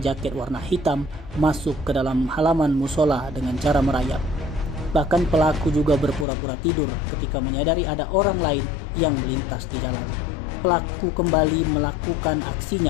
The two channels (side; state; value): right; drops out; at 6.2 s